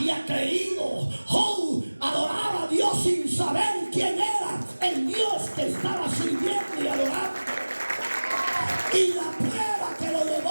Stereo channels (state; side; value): inverted; both; correlation -1.00